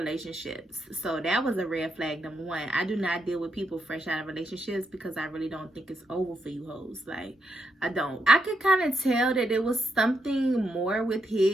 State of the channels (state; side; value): normal; both; correlation 0.81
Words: so that was a red flag. Number one, I do not deal with people fresh out of relationships because I really don't think it's over for you hoes. Like, I don't. I could kind of tell that there was something more with